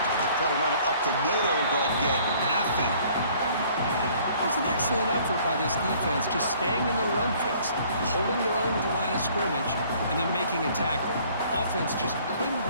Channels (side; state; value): both; inverted; correlation -0.57